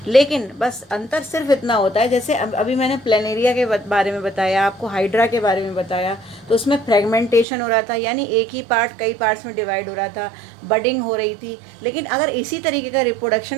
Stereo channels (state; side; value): drops out; left; at 7.5 s